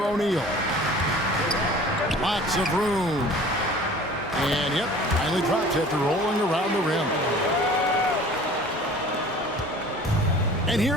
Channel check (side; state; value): both; normal; correlation 0.45